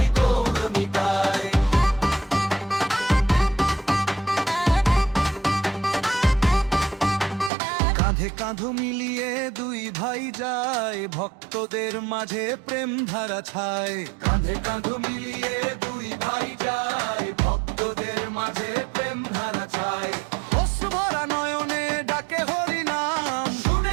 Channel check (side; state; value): left; drops out; at 7.5 s